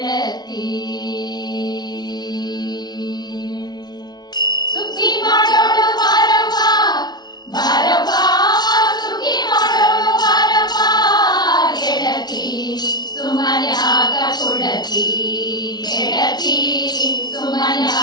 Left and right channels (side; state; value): right; late; 0.19 ms